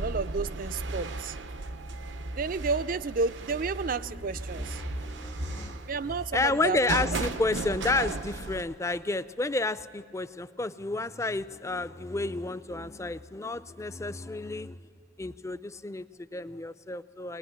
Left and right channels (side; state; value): both; normal; correlation 0.34